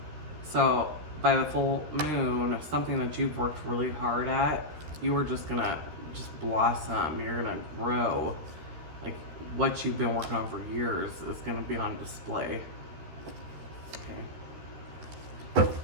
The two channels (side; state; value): left; late; 13 ms